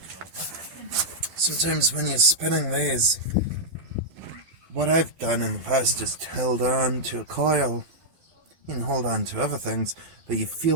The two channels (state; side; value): late; left; 12 ms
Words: Sometimes when you're spinning these, what I've done in the past is held on to a coil. You can hold on to other things, but you